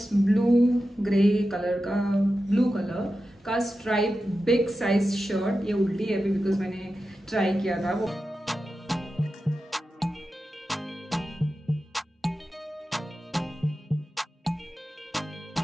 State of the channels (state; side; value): normal; both; correlation 0.92